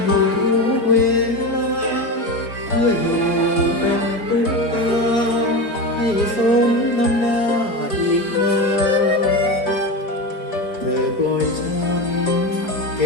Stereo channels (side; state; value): right; late; 4.3 ms